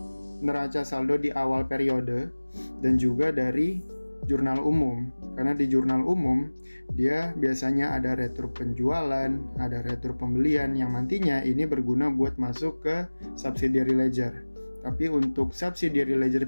neraca saldo di awal periode dan juga dari jurnal umum. Karena di jurnal umum dia biasanya ada retur penjualan, ada retur pembelian yang nantinya ini berguna buat masuk ke subsidiary ledger. Tapi untuk subsidiary ledger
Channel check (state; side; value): inverted; both; correlation -1.00